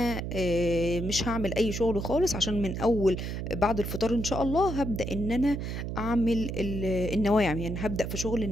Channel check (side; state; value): right; noise; hum, 4 dB below the sound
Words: مش هعمل اي شغل خالص، عشان من اول بعد الفطار ان شاء الله هبدا ان انا اعمل النواعم، يعني هبدا في شغل